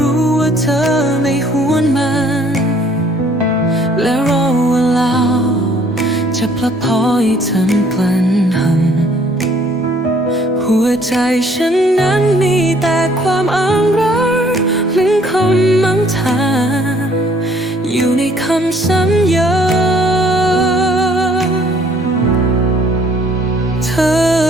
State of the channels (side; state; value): both; normal; correlation 0.60